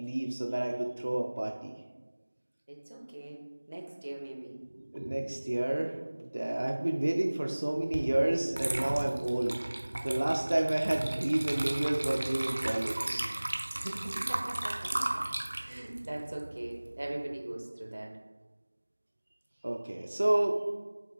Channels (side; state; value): both; inverted; correlation -1.00